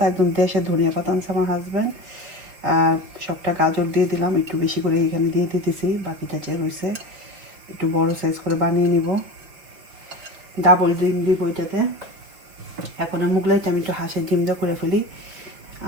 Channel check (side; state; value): left; late; 5.6 ms